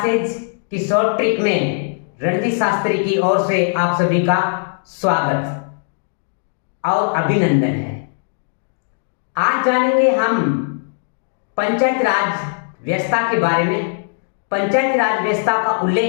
की short trick में रणजीत शास्त्री की ओर से आप सभी का स्वागत और अभिनंदन है। आज जानेंगे हम पंचायत राज व्यवस्था के बारे में। पंचायत राज व्यवस्था का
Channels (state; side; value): silent; right; digital silence